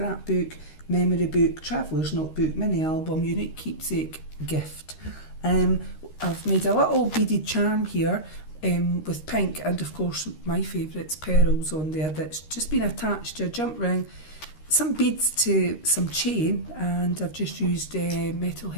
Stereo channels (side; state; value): right; late; 13 ms